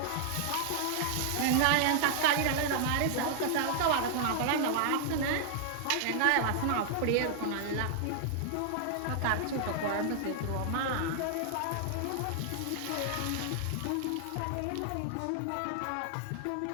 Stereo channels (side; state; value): both; different; correlation 0.00